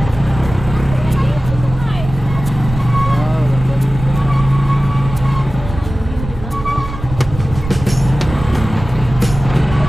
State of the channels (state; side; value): noise; right; rumble, 10 dB below the sound